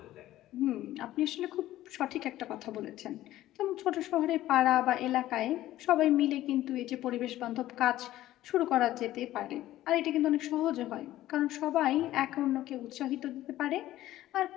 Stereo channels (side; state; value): right; quieter; 14.6 dB